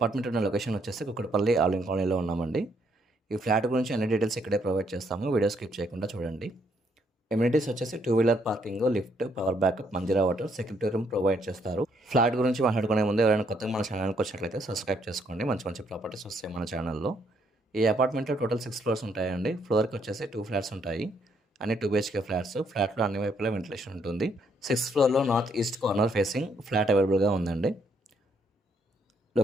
ఉన్న లొకేషన్ వచ్చేసి కుక్కట్పల్లి ఆలింగ్ కాలనీలో ఉన్నామండి. ఈ ఫ్లాట్ గురించి అన్ని డీటెయిల్స్ ఇక్కడే ప్రొవైడ్ చేస్తాము. వీడియో స్కిప్ చేయకుండా చూడండి. ఎమ్యూనిటీస్ వచ్చేసి 2 wheeler parking, lift, power backup, Manjeera water, security room provide చేస్తారు. ఫ్లాట్ గురించి మాట్లాడుకునే ముందు ఎవరైనా కొత్తగా మన ఛానల్‌కి వచ్చినట్లయితే సబ్స్క్రైబ్ చేసుకోండి. మంచి మంచి ప్రాపర్టీస్ వస్తాయి మన ఛానల్‌లో. ఈ అపార్ట్మెంట్‌లో టోటల్ 6 ఫ్లోర్స్ ఉంటాయండి. ఫ్లోర్‌కి వచ్చేసి 2 ఫ్లాట్స్ ఉంటాయి. అన్ని 2 బీహెచ్‌కే ఫ్లాట్స్. ఫ్లాట్‌లో అన్ని వైపులా వెంటిలేషన్ ఉంటుంది. 6th ఫ్లోర్‌లో north east corner facing flat అవైలబుల్‌గా ఉందండి.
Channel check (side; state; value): both; normal; correlation 0.71